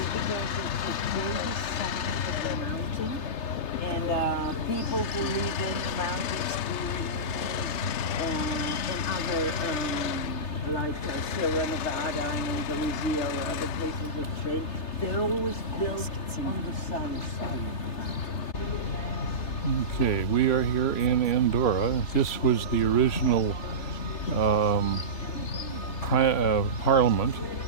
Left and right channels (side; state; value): right; late; 3.3 ms